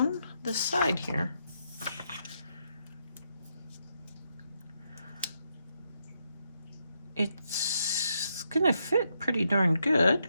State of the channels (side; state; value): both; inverted; correlation -0.80